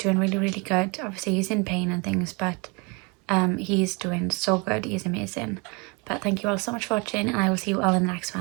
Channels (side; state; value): left; quieter; 30.4 dB